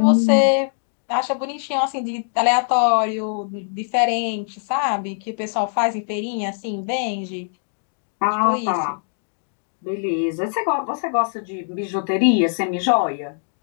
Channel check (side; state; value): right; silent; digital silence